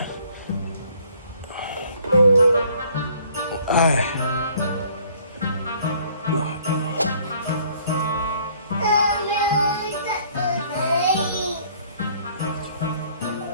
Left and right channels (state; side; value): inverted; both; correlation -0.59